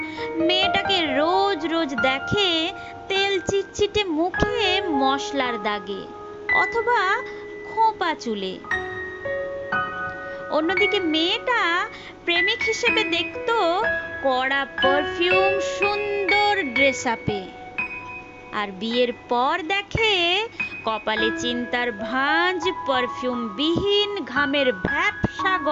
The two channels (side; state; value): both; identical; correlation 1.00